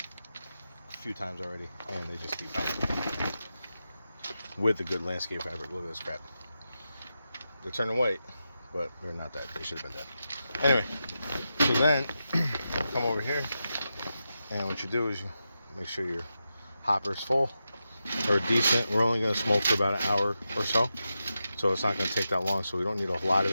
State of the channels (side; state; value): both; inverted; correlation -0.89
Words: a few times already, and they just keep coming with a good landscape fabric. Look at this crap. They're turning white, but they're not that. They should have been dead. Anyway, so then come over here, and what you do is you make sure your hopper is full or decent. We're only going to smoke for about an hour or so, so it's not going to take that long, so we don't need a lot of